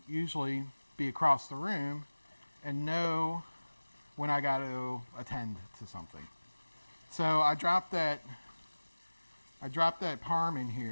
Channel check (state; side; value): inverted; both; correlation -1.00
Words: usually be across the room and know when I got to attend to something. So I dropped that parm in